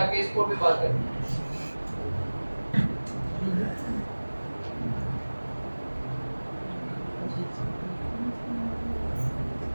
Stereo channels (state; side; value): inverted; both; correlation -1.00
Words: केस कोड पे बात करें।